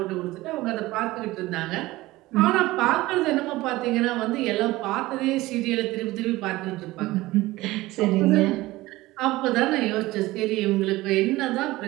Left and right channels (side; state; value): left; quieter; 18.7 dB